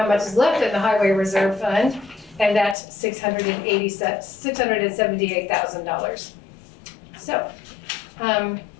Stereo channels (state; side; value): drops out; right; at 2.8 s